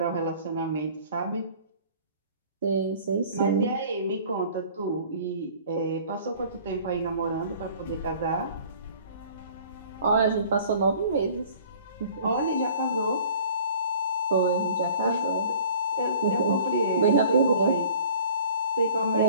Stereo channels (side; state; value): both; inverted; correlation -0.49